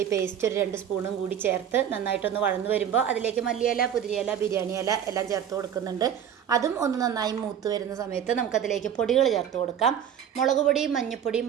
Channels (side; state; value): left; quieter; 9.0 dB